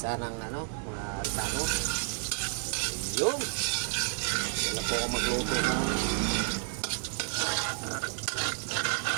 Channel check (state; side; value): silent; left; 57 dB below the other